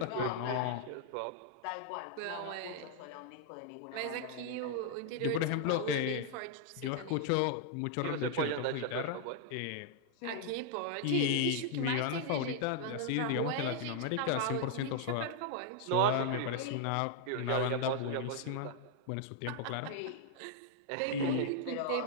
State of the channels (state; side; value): different; both; correlation -0.01